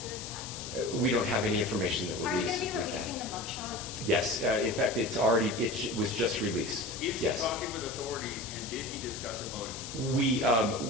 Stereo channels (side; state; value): left; noise; hiss, 9 dB below the sound